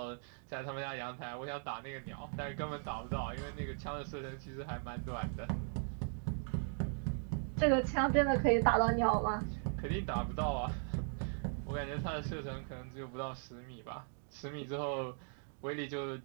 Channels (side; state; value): left; silent; 52 dB below the other